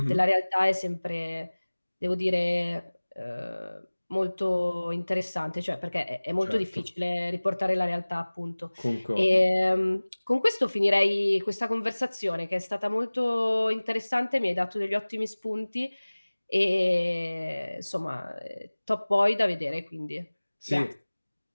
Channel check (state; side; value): inverted; both; correlation -1.00